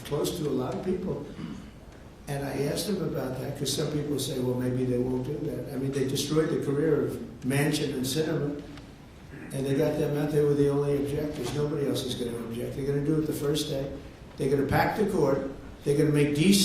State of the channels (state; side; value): identical; both; correlation 1.00